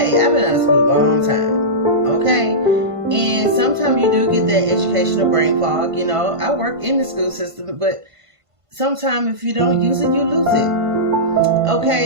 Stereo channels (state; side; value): late; left; 1.5 ms